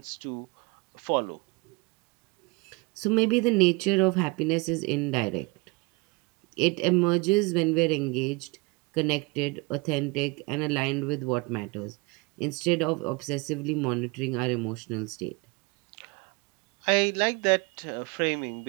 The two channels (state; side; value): quieter; left; 26.7 dB